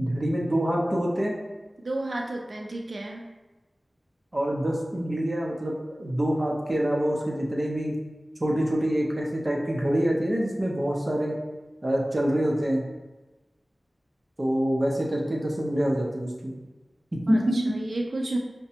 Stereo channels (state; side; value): normal; both; correlation 0.97